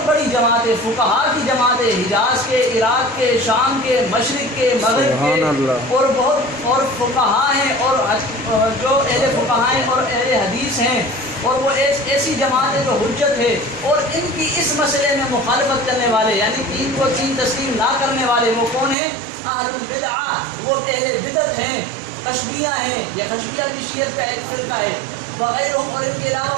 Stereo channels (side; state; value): left; drops out; at 18.9 s